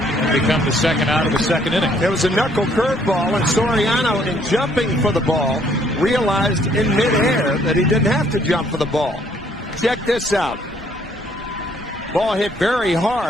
become the second out of the second inning. There was a knuckle curveball, and Soriano, in jumping for the ball, realized in midair that he didn't have to jump for the ball. Check this out. Ball hit very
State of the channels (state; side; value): normal; both; correlation 0.65